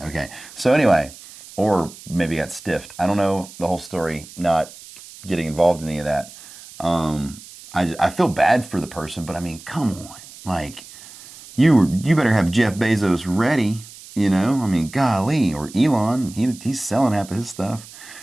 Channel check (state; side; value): noise; right; hiss, 18 dB below the sound